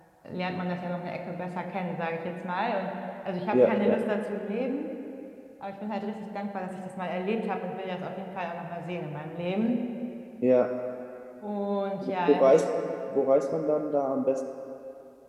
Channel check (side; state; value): both; identical; correlation 1.00